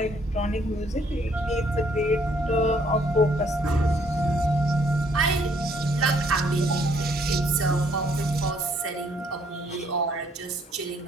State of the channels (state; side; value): normal; both; correlation 0.66